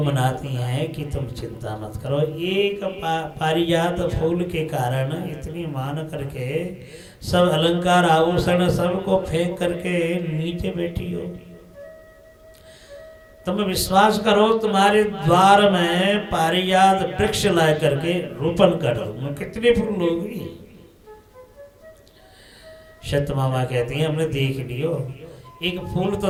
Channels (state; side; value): identical; both; correlation 1.00